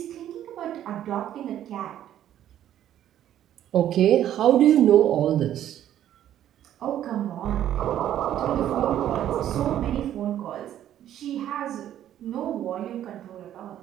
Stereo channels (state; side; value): quieter; left; 11.4 dB